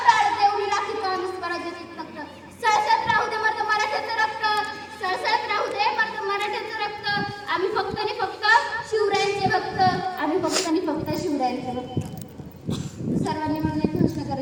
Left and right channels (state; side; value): identical; both; correlation 1.00